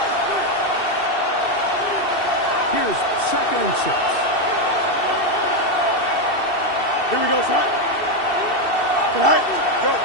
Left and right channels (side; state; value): right; late; 2.7 ms